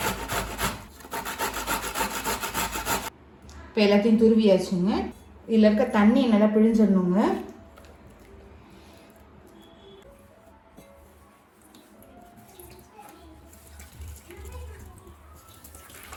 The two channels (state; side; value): identical; both; correlation 1.00